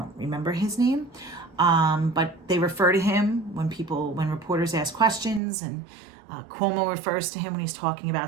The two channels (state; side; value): drops out; left; at 5.4 s